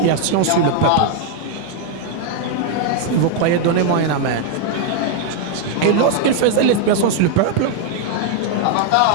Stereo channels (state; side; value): different; both; correlation 0.00